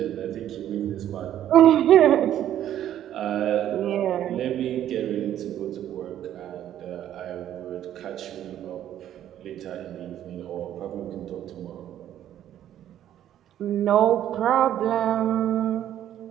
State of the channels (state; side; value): quieter; left; 11.4 dB